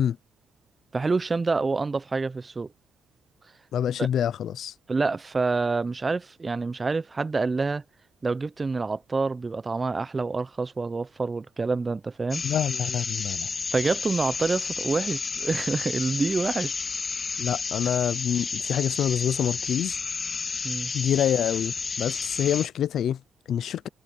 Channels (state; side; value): normal; both; correlation 0.82